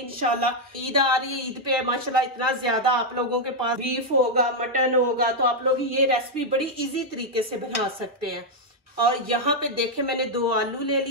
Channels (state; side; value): normal; both; correlation 0.00